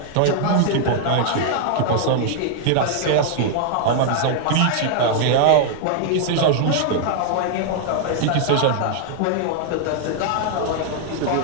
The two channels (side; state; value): both; different; correlation 0.00